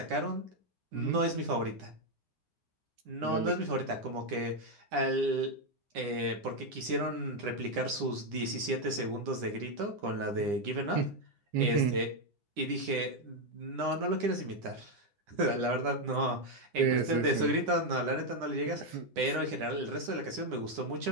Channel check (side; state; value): left; late; 9.9 ms